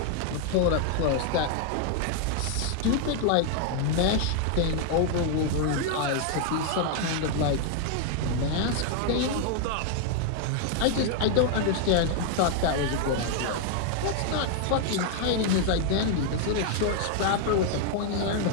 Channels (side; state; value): both; different; correlation 0.00